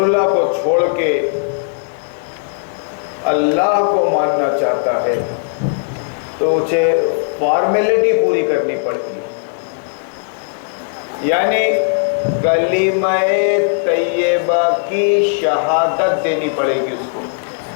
کو چھوڑ کے اللہ کو ماننا چاہتا ہے تو اسے فارمیلٹی پوری کرنی پڑتی ہے، یعنی کلمہ طیبہ کی شہادت دینی پڑے گی اس کو،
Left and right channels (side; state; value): right; silent; digital silence